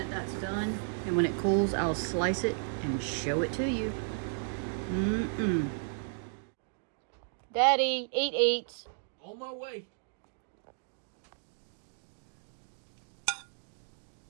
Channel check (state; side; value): silent; left; digital silence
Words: that's done, and when it cools, I'll slice it and show it to you. Daddy, eat. On my way.